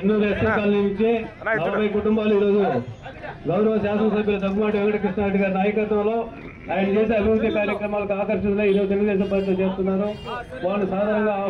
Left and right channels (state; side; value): identical; both; correlation 1.00